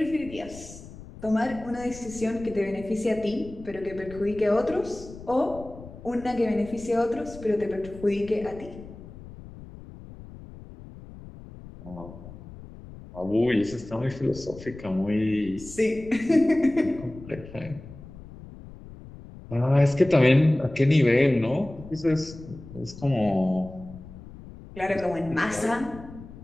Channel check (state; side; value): noise; left; rumble, 16 dB below the sound